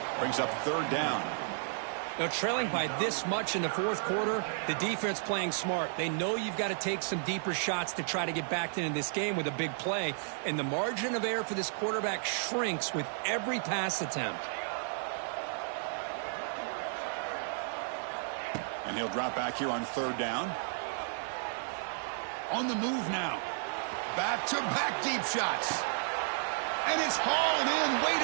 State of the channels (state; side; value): silent; left; 56 dB below the other